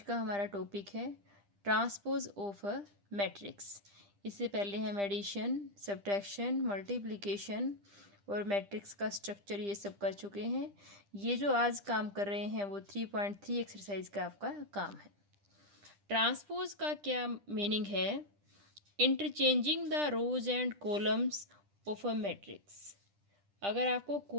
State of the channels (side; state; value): left; late; 10 ms